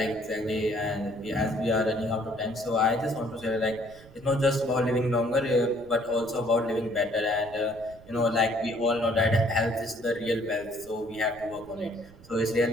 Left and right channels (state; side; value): noise; right; rumble, 22 dB below the sound